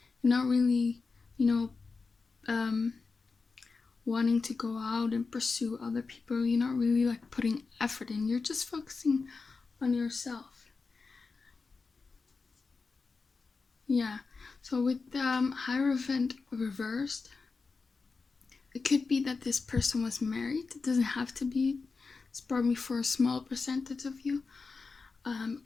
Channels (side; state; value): right; quieter; 4.4 dB